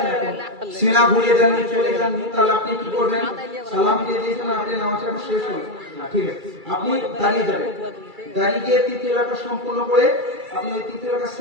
এখন সিনা ঘুরিয়ে দেননি, চলে যাননি, তাহলে আপনি কি করবেন? সালাম ফিরিয়ে দিয়েছেন, আপনি নামাজ এখন শেষ হল, ঠিক আছে, আপনি দাঁড়িয়ে যাবেন, দাঁড়িয়ে গিয়ে তৃতীয় রাকাত সম্পূর্ণ করে আপনি ওই তৃতীয় রাকাত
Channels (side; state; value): left; late; 2.3 ms